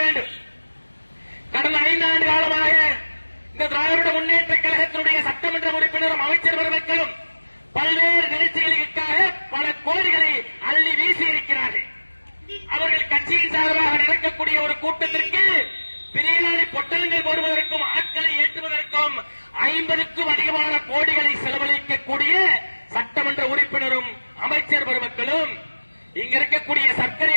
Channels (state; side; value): inverted; both; correlation -1.00